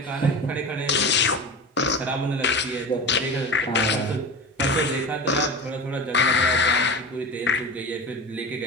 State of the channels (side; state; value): both; normal; correlation 0.29